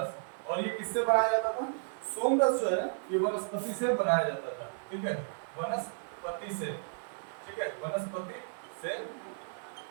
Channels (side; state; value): left; silent; 56 dB below the other